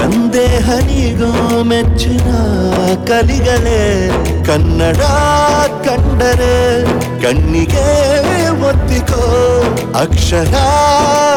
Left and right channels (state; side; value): identical; both; correlation 1.00